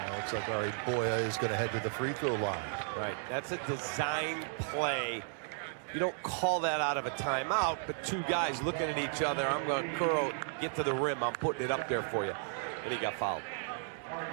Looks like Ari Boya is going to head to the free throw line. Right. That's a design play. You don't call that out of a timeout, but 2 guys looking at each other. I'm going to curl, get to the rim. I'm putting it up there for you. And he got fouled.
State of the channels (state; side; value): silent; left; 55 dB below the other